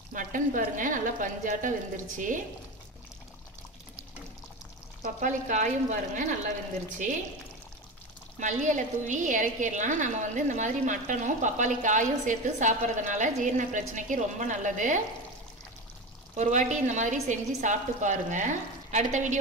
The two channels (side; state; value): both; normal; correlation 0.24